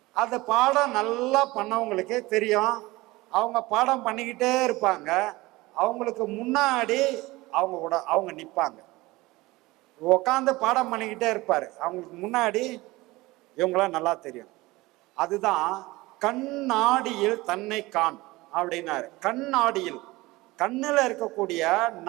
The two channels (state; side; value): quieter; left; 20.6 dB